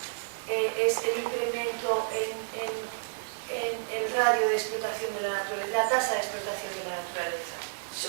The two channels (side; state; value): left; silent; digital silence